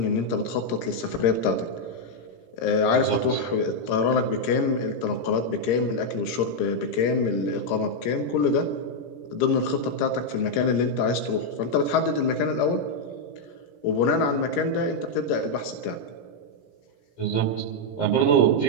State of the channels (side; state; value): right; late; 17 ms